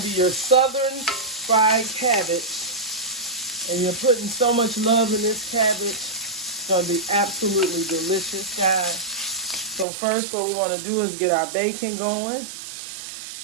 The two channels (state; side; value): drops out; left; at 9.9 s